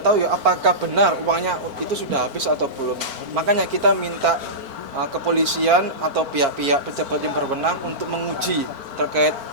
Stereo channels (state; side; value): late; left; 4.4 ms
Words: tahu ya apakah benar uangnya itu sudah habis atau belum. Makanya kita minta kepolisian atau pihak-pihak pejabat yang berwenang untuk menguji terkait